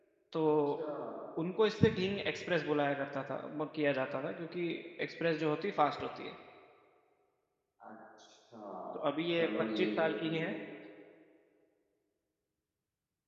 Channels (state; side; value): identical; both; correlation 1.00